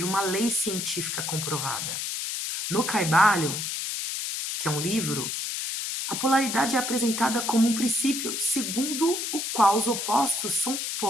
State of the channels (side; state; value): left; noise; hiss, 3 dB below the sound